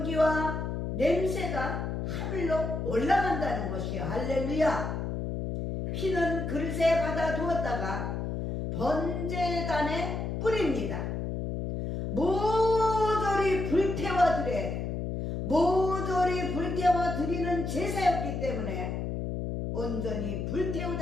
냄새가 하늘로 올라간다는 것이요. 할렐루야. 피는 그릇에 받아 두었다가 번제단에 뿌립니다. 모조리 불태워 드려야 돼요. 모조리 불태워 드리는 제사였기 때문에 온전히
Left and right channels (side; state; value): left; noise; hum, 3 dB below the sound